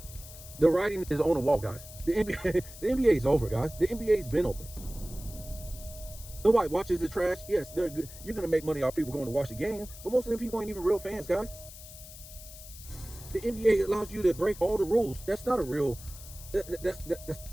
The writing is on the wall, guys. The NBA is over, guys. The NBA's been over. Nobody watches the trash. Yes, they're good. You're gonna make money off people going to watch the game, but most of them people ain't even real fans, guys. The NBA allows you to break all the rules. That's not a real.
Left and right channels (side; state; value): left; noise; hiss, 16 dB below the sound